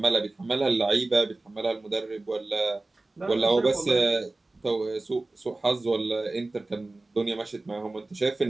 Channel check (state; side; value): quieter; left; 3.0 dB